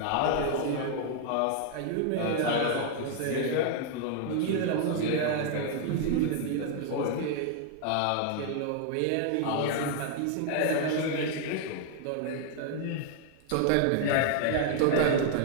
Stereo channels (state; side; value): different; both; correlation 0.00